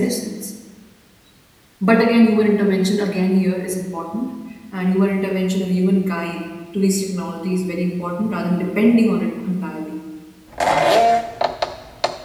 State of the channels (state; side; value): identical; both; correlation 1.00